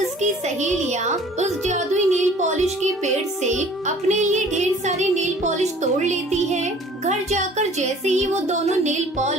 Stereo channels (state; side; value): normal; both; correlation 0.51